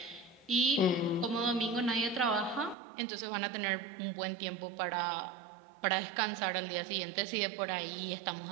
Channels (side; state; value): left; drops out; at 2.8 s